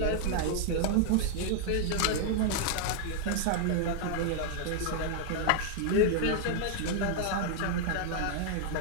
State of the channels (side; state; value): both; different; correlation -0.01